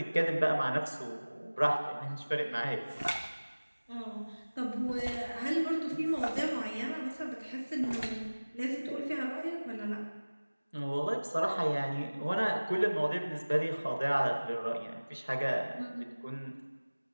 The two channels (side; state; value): both; inverted; correlation -1.00